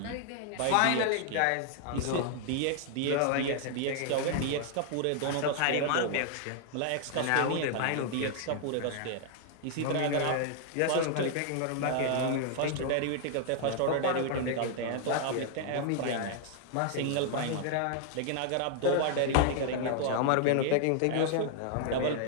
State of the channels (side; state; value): both; different; correlation 0.00